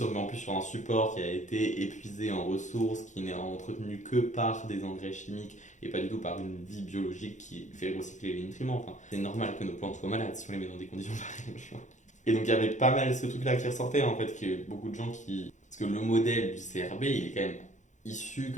on met en plus sur un support qui a été épuisé en ressources, qui n'est entretenu que par des engrais chimiques et pas du tout par une vie biologique qui fait recycler les nutriments. C'est normal que nos plantes soient malades si on les met dans des conditions pareilles. Et donc il y avait pas mal ce truc-là qui ressortait en fait, que beaucoup de gens qui... Parce que le modèle du CRB, il est quand même issu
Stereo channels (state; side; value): late; right; 0.35 ms